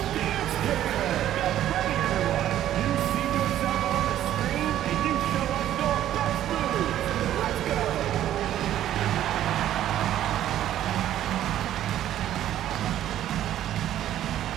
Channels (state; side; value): quieter; left; 12.1 dB